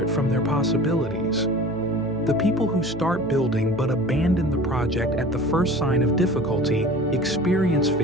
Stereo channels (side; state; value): right; noise; hum, 17 dB below the sound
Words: from their possibilities. The people who start building but abandon the project at the first sign of difficulty experience